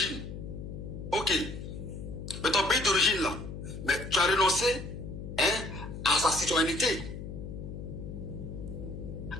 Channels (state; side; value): noise; left; hum, 8 dB below the sound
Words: Ok. Mais ton pays d'origine là, mais tu as renoncé à sa citoyenneté.